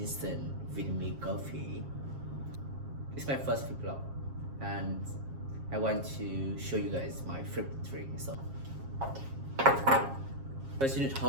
vitamin coffee? It's my first vlog and I want to show you guys my favorite drink. So first you need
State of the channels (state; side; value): late; left; 7.4 ms